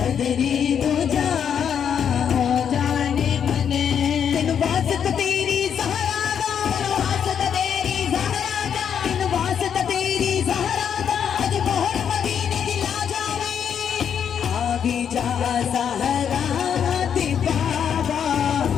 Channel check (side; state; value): right; quieter; 8.1 dB